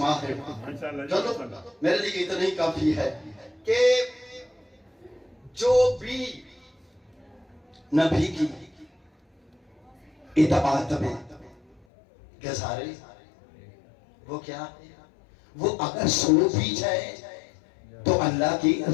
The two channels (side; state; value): right; drops out; at 11.8 s